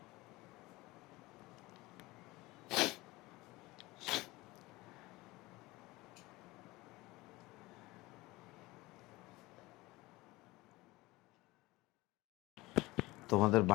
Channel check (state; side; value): quieter; right; 20.7 dB